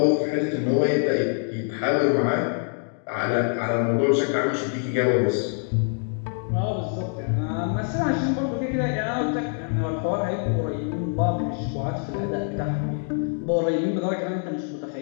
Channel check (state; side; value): silent; right; 56 dB below the other